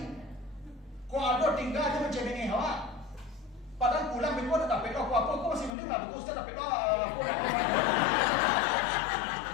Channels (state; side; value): drops out; right; at 5.8 s